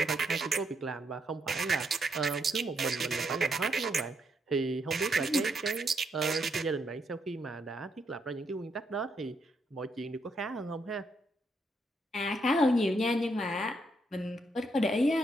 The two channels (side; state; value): both; normal; correlation 0.77